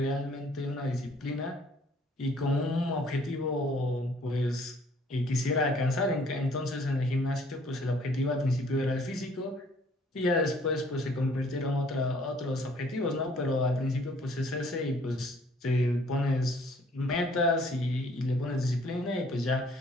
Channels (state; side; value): normal; both; correlation 0.59